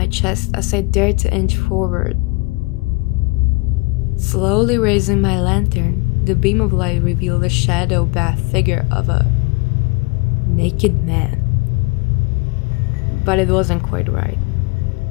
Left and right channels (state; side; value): quieter; right; 27.5 dB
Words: chest as I dared to inch forward. Slowly raising my lantern, the beam of light revealed a shadow-bathed figure of a naked man. But it wasn't quite right.